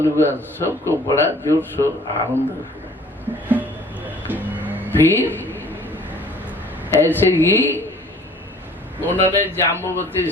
हुआ, सबको बड़ा जोर शोर आनंद हुआ। फिर ऐसे ही उन्होंने जाम्बुवती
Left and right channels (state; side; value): normal; both; correlation 0.53